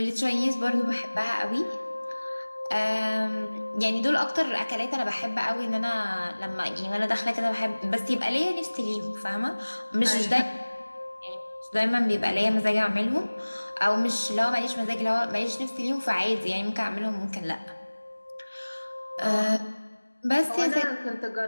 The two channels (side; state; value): both; inverted; correlation -1.00